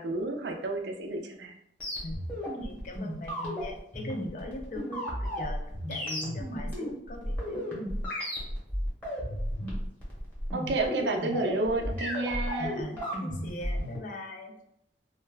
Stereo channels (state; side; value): normal; both; correlation 0.46